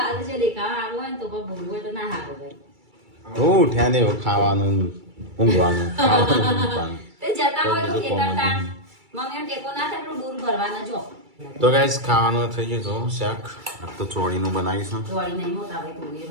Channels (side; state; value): left; late; 2.3 ms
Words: હું ઉઠ્યા ને ખાવાનું ઊંઘવાનું તો ગાઈસ ખાવાનું થઈ ગયું. શાક તો ચોળીનું બનાવીશું.